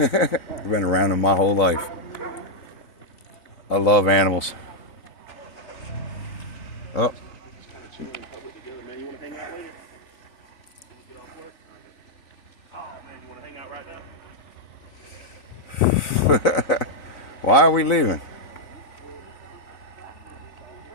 been around them my whole life. I love animals. Oh. Man, you want to hang out later? Get off work? Oh, man, you want to hang out right now? Why are we leaving?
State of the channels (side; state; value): right; late; 4.0 ms